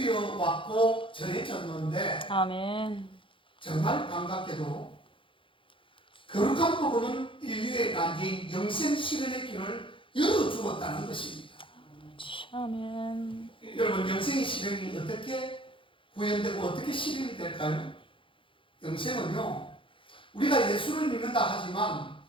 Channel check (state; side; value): late; right; 0.25 ms